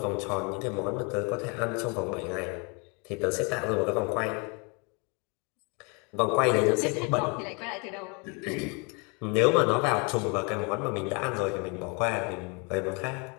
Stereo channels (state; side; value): quieter; right; 32.4 dB